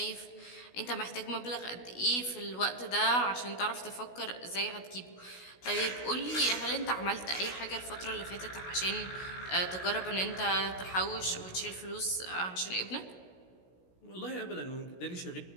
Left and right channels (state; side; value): late; right; 16 ms